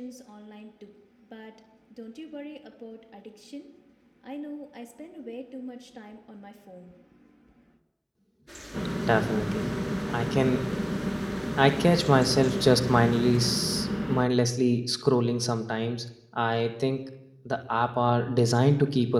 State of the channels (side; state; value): both; identical; correlation 1.00